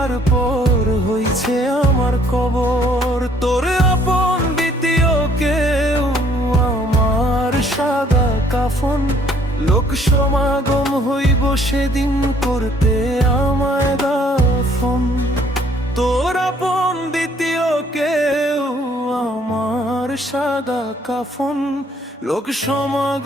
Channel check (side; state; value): both; normal; correlation 0.62